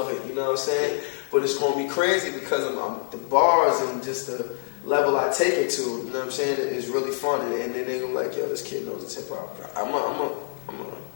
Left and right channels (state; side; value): silent; right; digital silence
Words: it, you know what I'm saying. But it's gonna be crazy because I'm the bars and just the level I take it to, you know what I'm saying, is really fun, and then they go like, yo, this kid knows his hip hop. I'm